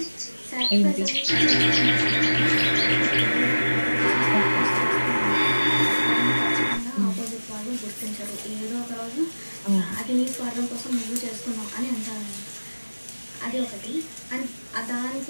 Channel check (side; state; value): both; inverted; correlation -1.00